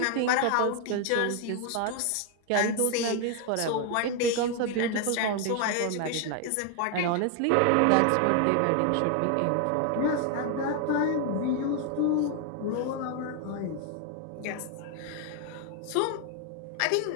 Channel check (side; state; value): both; different; correlation 0.01